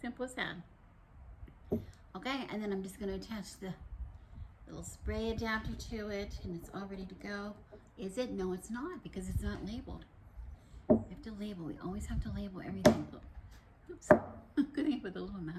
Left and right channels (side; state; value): both; identical; correlation 1.00